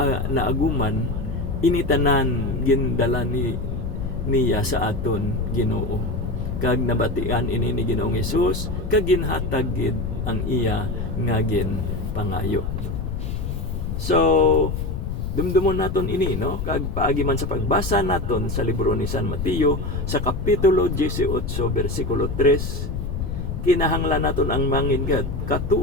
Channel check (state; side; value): noise; left; rumble, 4 dB below the sound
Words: naaguman, initanan gindala niya sa aton Ginoo. Kag nabatian ini ni Ginoong Hesus kag ginhatag gid ang iya nga ginpangayo. So dumdumon naton ini, no? Kag paagi man sa pagbasa naton sa libro ni San Mateo sa kapitulo 18 bersikulo 3, kinahanglan naton ang mangin